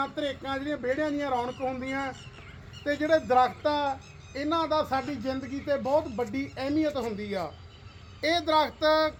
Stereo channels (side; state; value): both; identical; correlation 1.00